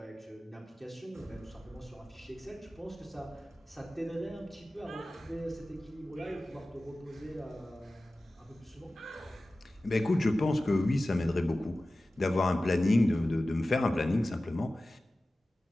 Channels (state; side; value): normal; both; correlation 0.96